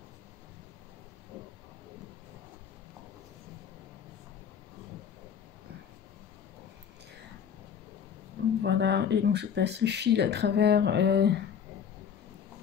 Voilà, et donc je passe le fil à travers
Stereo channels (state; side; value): quieter; right; 7.8 dB